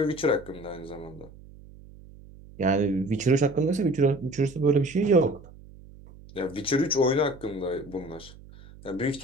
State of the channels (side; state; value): right; noise; hum, 20 dB below the sound